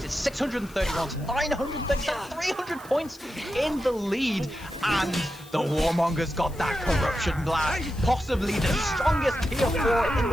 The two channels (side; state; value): left; noise; hiss, 23 dB below the sound